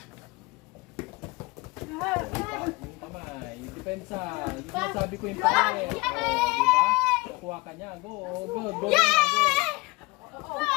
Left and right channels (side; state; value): right; quieter; 24.3 dB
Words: depensa. Yung sinasabi ko yung pare. O, diba? Kuha ka niya. Go, go, go. Go. Oh,